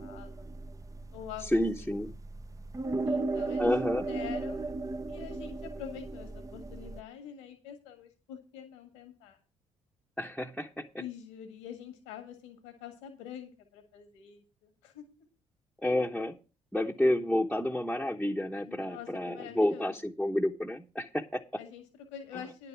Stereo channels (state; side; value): normal; both; correlation 0.90